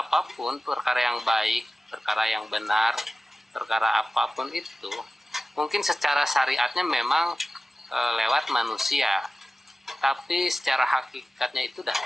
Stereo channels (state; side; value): normal; both; correlation 0.95